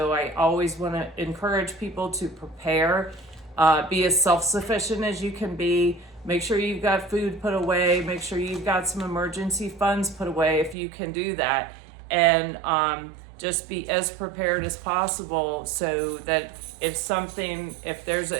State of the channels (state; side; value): drops out; left; at 10.8 s